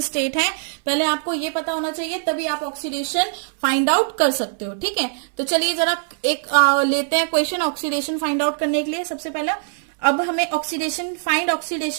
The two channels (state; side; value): silent; left; 61 dB below the other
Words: स्टेट है पहले आपको ये पता होना चाहिए, तभी आप ऑक्सीडेशन फाइंड आउट कर सकते हो, ठीक है। तो चलिए जरा एक लेते हैं क्वेश्चन ऑक्सीडेशन फाइंड आउट करने के लिए। सबसे पहला अब हमें find